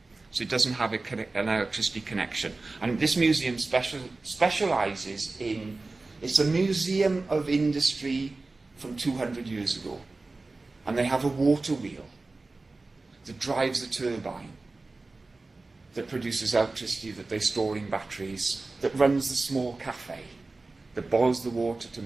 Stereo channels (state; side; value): quieter; left; 3.4 dB